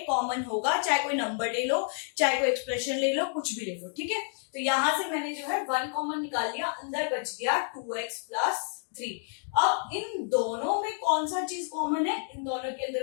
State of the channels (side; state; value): right; silent; 58 dB below the other